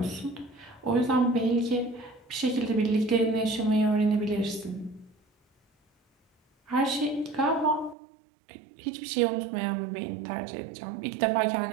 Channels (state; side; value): drops out; left; at 8.0 s